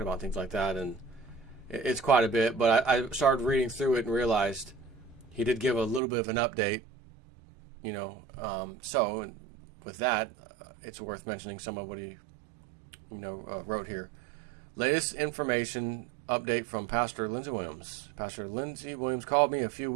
about, things like that, and it's quite a bit. But I started reading through it and realized he did give a little bit of an update, so with that, it's worth mentioning some of what he, wrote here. Latest information update from Pastor Lindsey Williams. Pastor Lindsey Williams called me a few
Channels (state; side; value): drops out; left; at 6.0 s